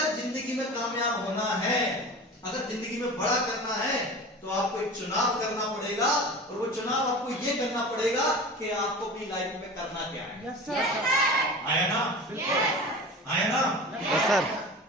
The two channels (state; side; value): normal; both; correlation 0.34